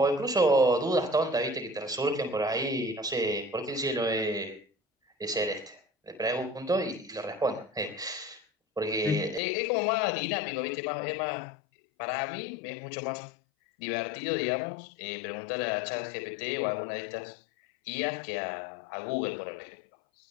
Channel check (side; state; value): right; drops out; at 9.4 s